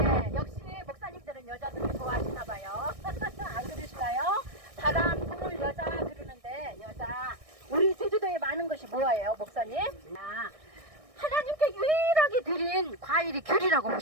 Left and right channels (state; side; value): late; left; 1.6 ms